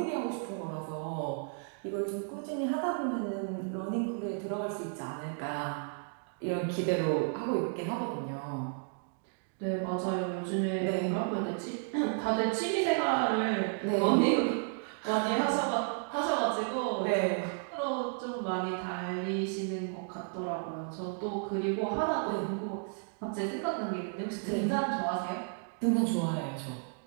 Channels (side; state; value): left; silent; 56 dB below the other